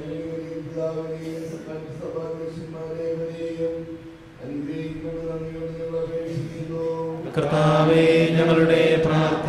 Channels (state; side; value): identical; both; correlation 1.00